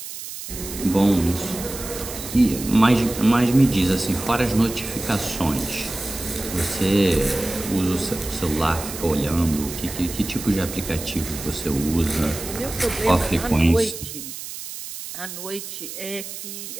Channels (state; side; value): noise; right; hiss, 10 dB below the sound